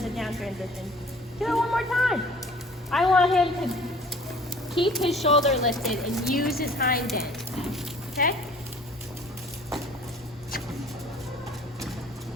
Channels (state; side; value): normal; both; correlation 0.50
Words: the down transition. Do it one more time. I want him to keep his shoulder lifted and use his hind end. Okay?